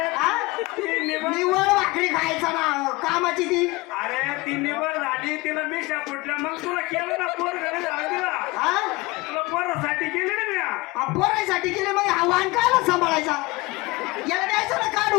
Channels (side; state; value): right; quieter; 22.7 dB